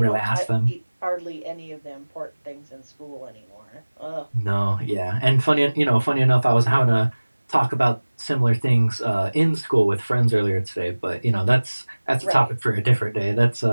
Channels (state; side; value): inverted; both; correlation -1.00